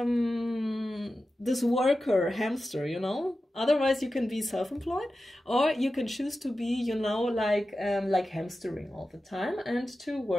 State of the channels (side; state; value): both; normal; correlation 0.93